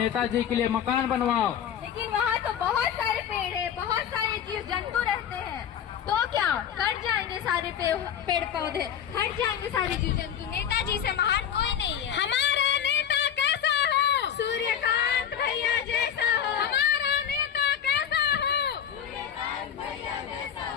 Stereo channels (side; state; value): right; quieter; 9.0 dB